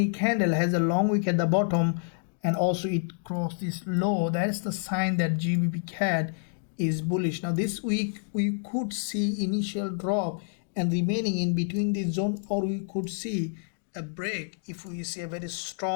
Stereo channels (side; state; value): right; silent; digital silence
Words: candle has a long wick at the bottom and also it crossed this low. That's the sign that GBPCAD is bullish. Now this week we could see initial drop and remaining in between this zone, or we could see a break if we see a very